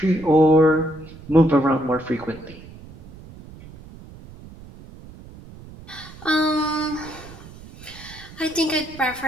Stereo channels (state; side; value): noise; right; rumble, 18 dB below the sound